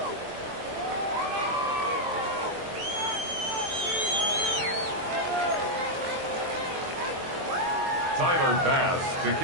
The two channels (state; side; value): late; left; 23 ms